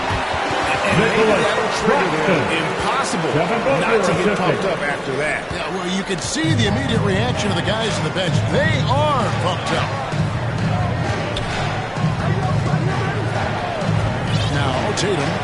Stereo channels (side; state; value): both; identical; correlation 1.00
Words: And that'll trigger them. Impossible not to get pumped up after that. Yeah, well, you can see the immediate reaction of the guys on the bench. They are pumped up. Now, Tatum.